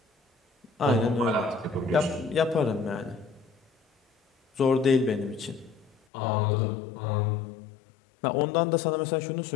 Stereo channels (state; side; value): drops out; right; at 6.0 s